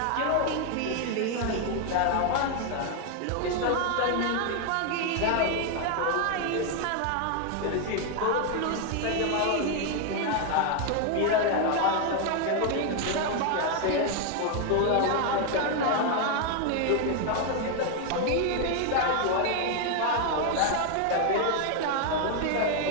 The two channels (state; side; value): different; both; correlation 0.00